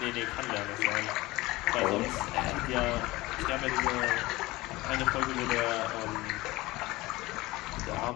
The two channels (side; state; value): right; quieter; 19.9 dB